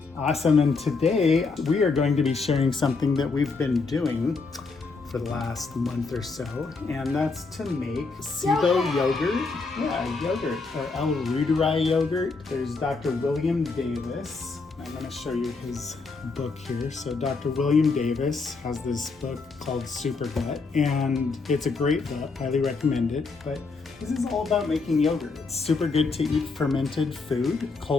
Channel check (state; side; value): quieter; right; 4.2 dB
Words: Awesome, and today we are going to be sharing something that we've been doing for the last month or so, and that's to make SIBO yogurt. Yeah, yogurt, or 𝗟𝗏𝗄𝗏 yogurt. There's Dr. William Davis. I'm going to show you his book here. So Dr. William Davis has this book called Super Gut, and it's a great book. Highly recommend it. But this is all about making yogurt. It's super good to eat fermented food,